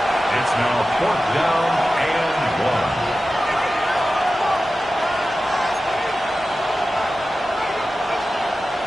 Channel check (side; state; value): both; normal; correlation 0.94